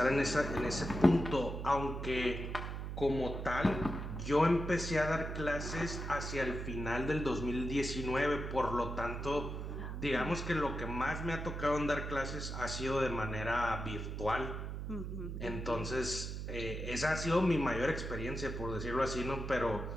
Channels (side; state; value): right; noise; hum, 5 dB below the sound